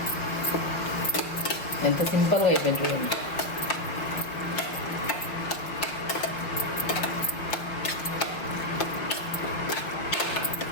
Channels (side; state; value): right; late; 5.4 ms